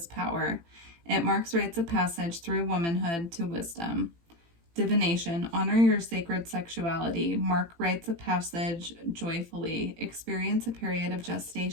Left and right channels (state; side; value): late; left; 18 ms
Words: power. It marks rites of passage through womanhood to wisdom. Divination, honor your sacred sexuality, mark rites of passage joyfully, experience a period of